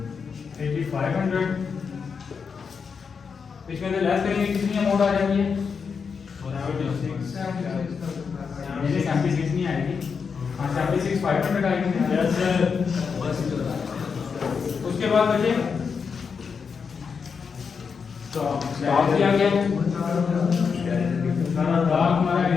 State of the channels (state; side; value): quieter; right; 5.9 dB